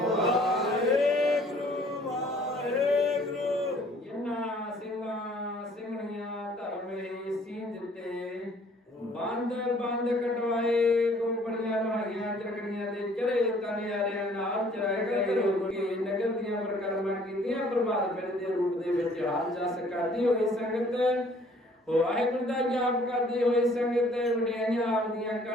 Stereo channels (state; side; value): normal; both; correlation 0.58